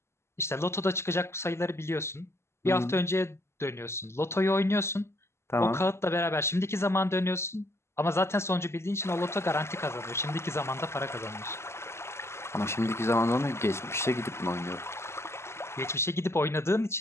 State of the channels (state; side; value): late; right; 0.13 ms